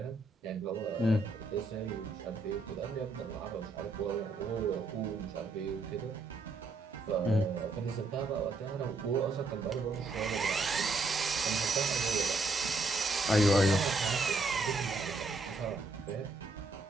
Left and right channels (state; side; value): quieter; left; 3.1 dB